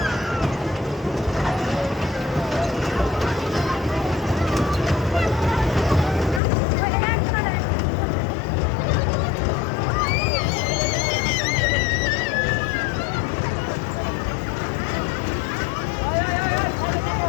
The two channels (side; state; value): right; drops out; at 6.4 s